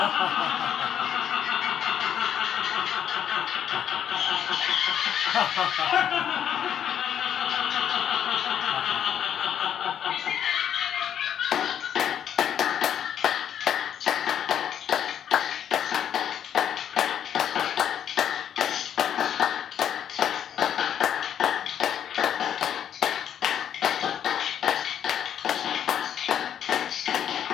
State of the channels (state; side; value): quieter; right; 9.4 dB